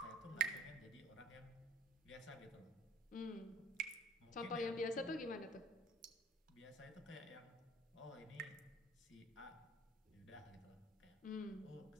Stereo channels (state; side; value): normal; both; correlation 0.52